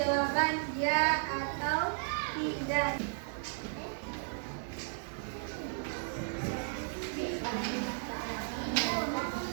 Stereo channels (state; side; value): silent; left; digital silence